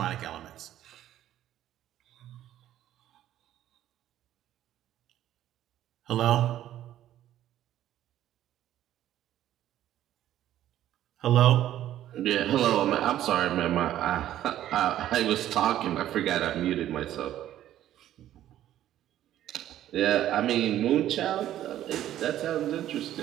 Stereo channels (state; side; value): quieter; left; 12.4 dB